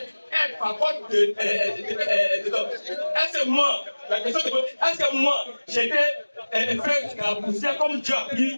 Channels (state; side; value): inverted; both; correlation -1.00